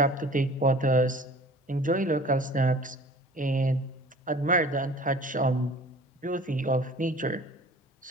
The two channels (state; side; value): normal; both; correlation 0.46